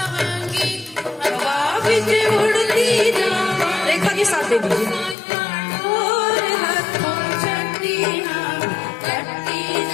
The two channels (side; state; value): right; drops out; at 5.2 s